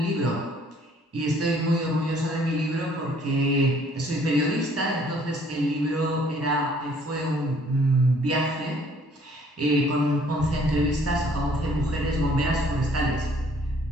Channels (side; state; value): both; normal; correlation 0.60